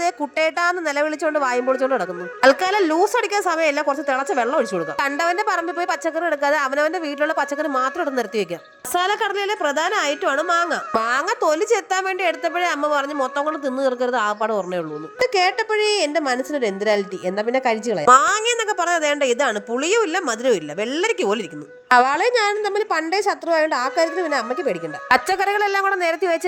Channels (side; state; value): both; identical; correlation 1.00